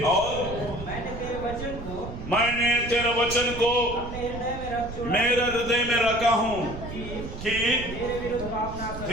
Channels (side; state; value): right; noise; rumble, 10 dB below the sound